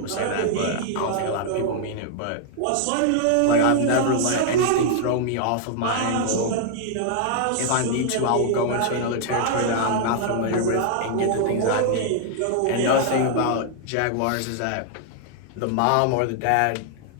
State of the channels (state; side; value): different; both; correlation 0.00